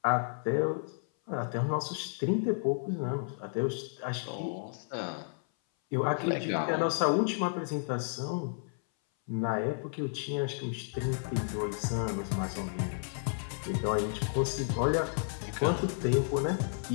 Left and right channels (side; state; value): right; silent; 56 dB below the other